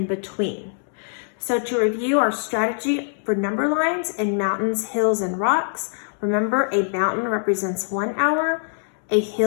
between. So to review our strategy for number lines in mountains, hills, and rocks, remember a mountain represents 1 hour, a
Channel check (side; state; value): right; silent; digital silence